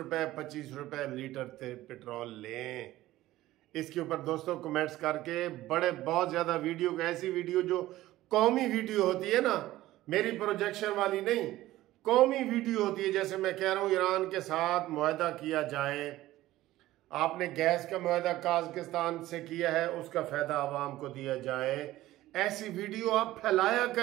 25 रुपए लीटर पेट्रोल लें। इसके ऊपर दोस्तों कमेंट्स करके बहुत ज्यादा वीडियो, ऐसी वीडियो जो कौमी वीडियो होती है ना, मेरी प्रोजेक्शन वाली नहीं, कौमी वीडियो होती है। जैसे मैं कह रहा हूं ईरान के साथ मुआहदा किया जाए, आपने गैस का मुआहदा काज़किस्तान से किया है, उसका फायदा आवाम को दिया जाए। ऐसी वीडियो आप फैलाया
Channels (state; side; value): quieter; left; 15.9 dB